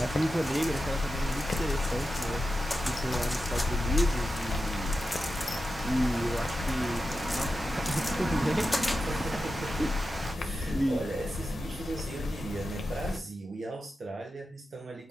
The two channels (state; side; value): normal; both; correlation 0.91